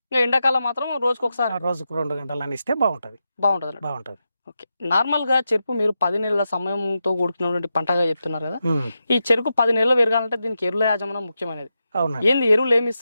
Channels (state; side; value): inverted; both; correlation -0.88